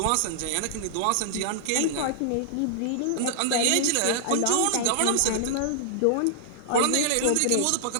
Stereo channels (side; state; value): both; different; correlation -0.01